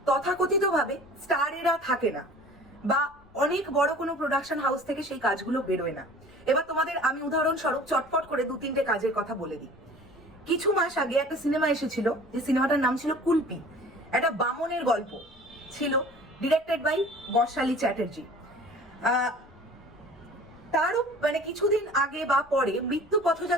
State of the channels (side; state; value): left; noise; rumble, 28 dB below the sound